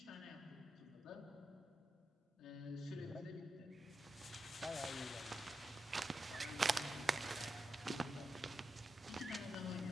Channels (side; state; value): both; normal; correlation 0.88